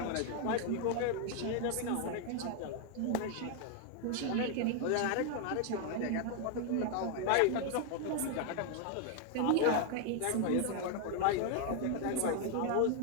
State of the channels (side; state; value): both; different; correlation 0.00